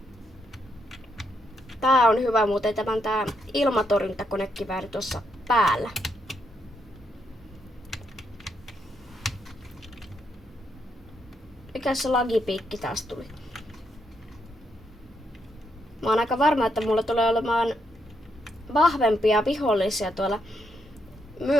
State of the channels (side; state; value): both; normal; correlation 0.79